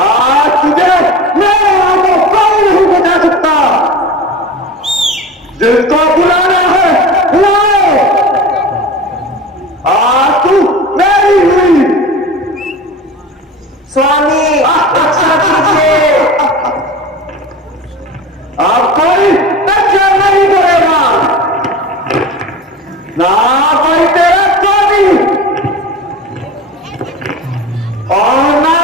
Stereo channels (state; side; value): normal; both; correlation 0.34